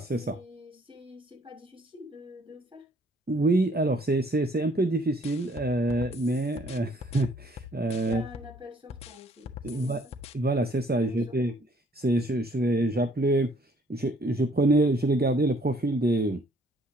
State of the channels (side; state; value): both; normal; correlation 0.61